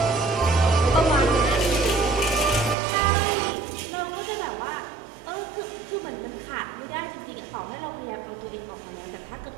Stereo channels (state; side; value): drops out; left; at 2.8 s